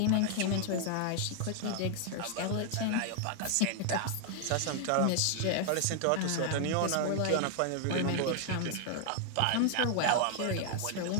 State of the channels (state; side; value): different; both; correlation 0.00